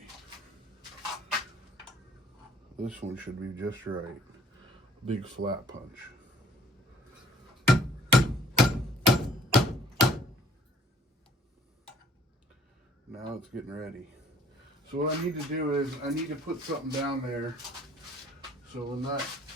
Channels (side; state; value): both; normal; correlation 0.57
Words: This one should be just right. Big flat punch. Now it's getting ready. So what I need to do is I need to put something down there so when that